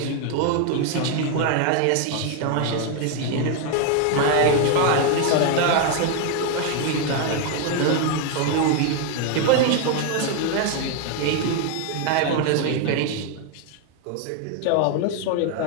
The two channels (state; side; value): different; both; correlation 0.01